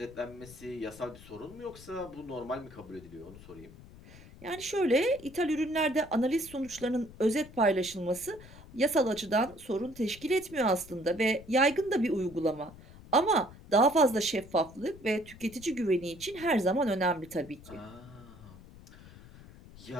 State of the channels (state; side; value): noise; left; rumble, 19 dB below the sound